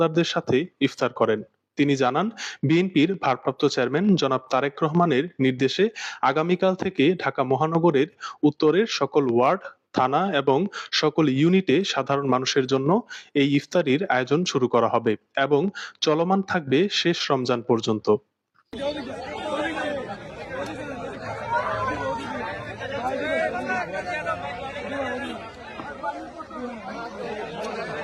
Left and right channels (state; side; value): identical; both; correlation 1.00